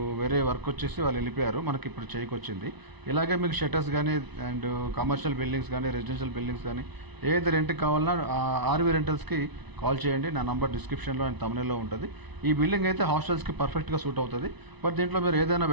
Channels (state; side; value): late; left; 1.0 ms